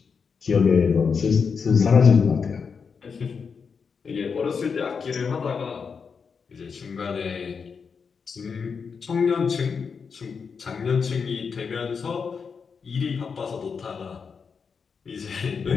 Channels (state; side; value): quieter; right; 5.8 dB